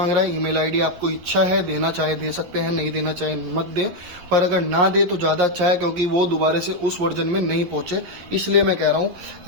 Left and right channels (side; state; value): left; late; 11 ms